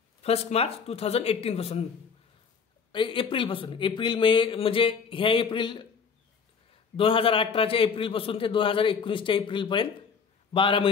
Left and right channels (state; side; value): quieter; right; 6.0 dB